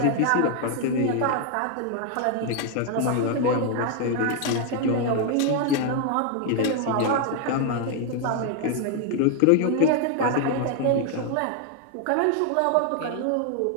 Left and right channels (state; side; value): different; both; correlation 0.00